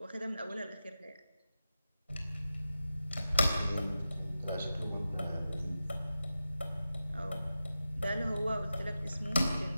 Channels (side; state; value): both; inverted; correlation -0.92